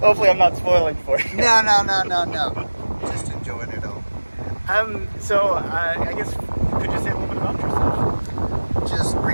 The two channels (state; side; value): inverted; both; correlation -1.00